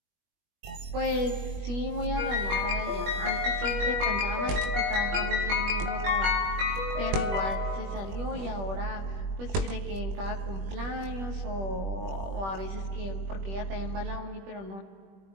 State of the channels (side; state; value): left; late; 21 ms